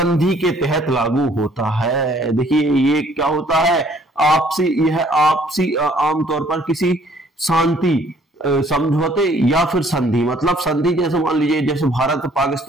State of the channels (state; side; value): normal; both; correlation 0.61